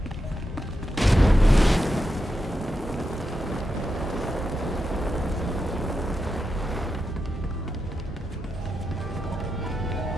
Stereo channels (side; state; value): both; normal; correlation 0.87